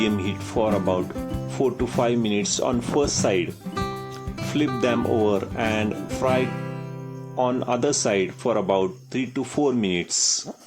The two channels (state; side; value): identical; both; correlation 1.00